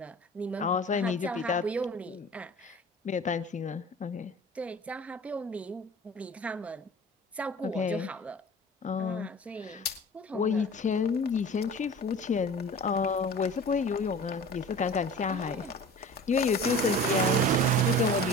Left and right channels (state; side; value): normal; both; correlation 0.40